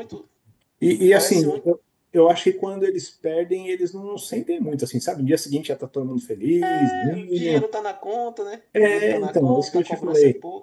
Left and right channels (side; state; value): both; identical; correlation 1.00